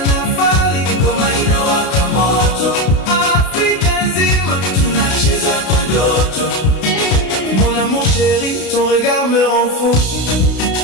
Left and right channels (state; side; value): late; right; 32 ms